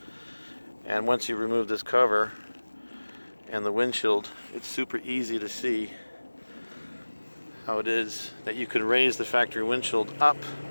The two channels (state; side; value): inverted; both; correlation -1.00